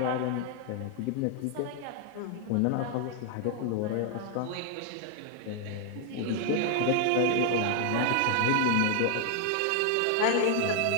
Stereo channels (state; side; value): different; both; correlation 0.00